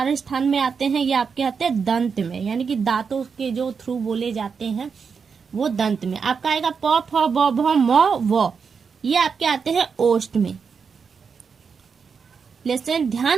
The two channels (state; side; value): quieter; left; 5.9 dB